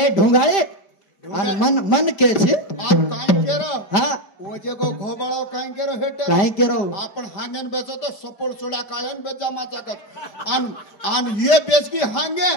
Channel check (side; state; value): right; late; 5.1 ms